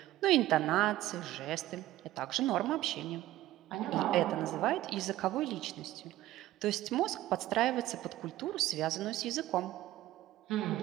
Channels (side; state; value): left; quieter; 15.2 dB